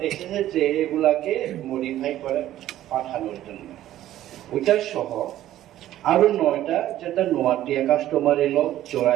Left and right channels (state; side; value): quieter; left; 13.3 dB